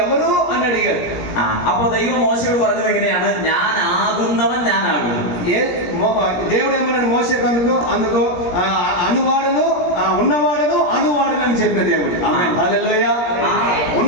ఎవరు అని అడిగాడు. അപ്പൊ ദൈവം മോശയോട് പറഞ്ഞത് എങ്ങനെയാണ്? ഞാൻ ആകുന്നവൻ ഞാനാകുന്നു. దేవుడు ఏమన్నాడు మోషేకు? అందుకు అనువాడను, ఉన్నవాడను, అనువాడను అని చెప్పిన దేవుడు. ఆమేన్, హల్లెలూయా.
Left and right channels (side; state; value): right; late; 17 ms